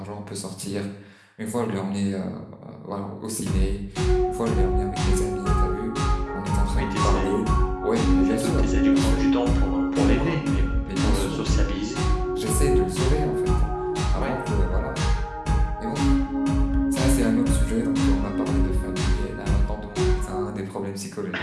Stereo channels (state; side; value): identical; both; correlation 1.00